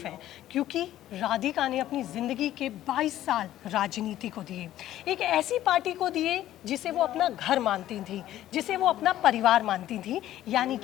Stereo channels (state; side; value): quieter; right; 13.3 dB